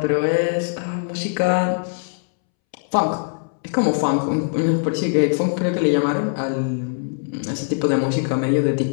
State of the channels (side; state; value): right; silent; 65 dB below the other